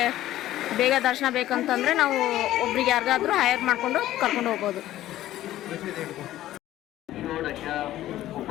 ಬೇಗ ದರ್ಶನ ಬೇಕಂತಂದರೆ ನಾವು ಒಬ್ರಿಗೆ ಯಾರಿಗಾದರೂ ಹೈರ್ ಮಾಡಿಕೊಂಡು ಕರ್ಕೊಂಡು ಹೋಗ್ಬೋದು.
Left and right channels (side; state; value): right; quieter; 14.1 dB